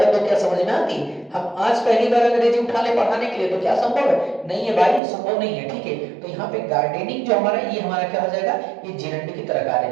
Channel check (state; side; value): drops out; left; at 5.0 s